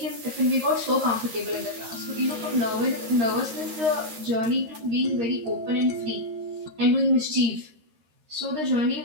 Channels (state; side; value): late; left; 13 ms